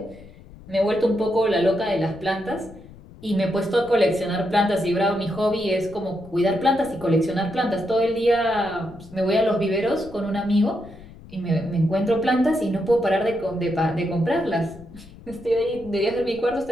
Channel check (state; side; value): noise; left; rumble, 20 dB below the sound